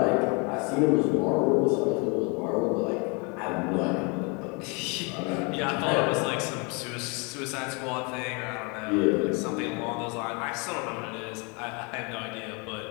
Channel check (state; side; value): quieter; right; 31.8 dB